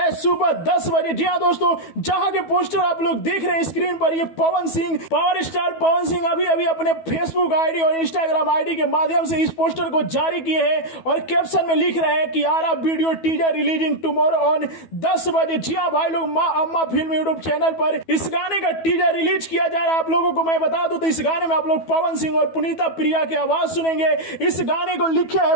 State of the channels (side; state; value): right; late; 12 ms